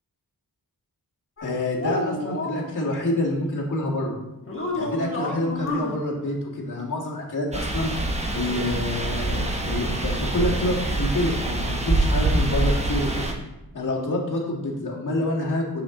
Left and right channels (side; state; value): both; normal; correlation 0.41